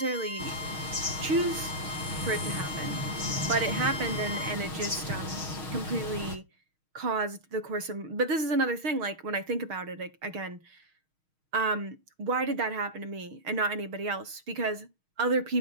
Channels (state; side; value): late; left; 6.4 ms